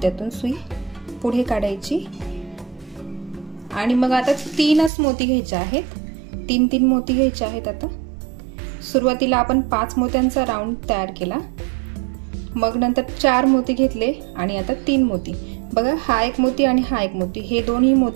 सुई पुढे काढायची आणि मग आता 3च मोती घ्यायचे आहेत। 3 मोती घ्यायचे आहेत। आता सुरुवातीला आपण 5 मोत्यांचा राऊंड तयार केला, मग नंतर 4 मोती घेतले आणि आता 3 मोती। बघा, हा 1 मोती आणि हा 1 मोती, हे दोन्ही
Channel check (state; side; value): drops out; left; at 4.9 s